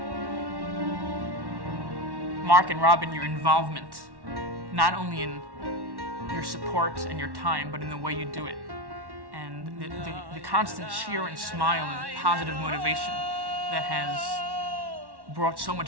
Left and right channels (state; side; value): late; left; 1.1 ms